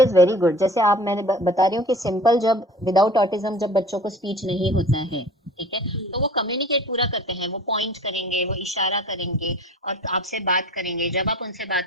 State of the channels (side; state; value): both; normal; correlation 0.44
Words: is very good. जैसे आप मैंने बता रही हूँ कि सिंपल जब विदाउट ऑटिज्म जब बच्चों को स्पीच नहीं होता है, ठीक है, तो वो कम्युनिकेट पूरा करते हैं, वो पॉइंट करेंगे, वो इशारा करेंगे और आपसे बात करेंगे, जब आप उनसे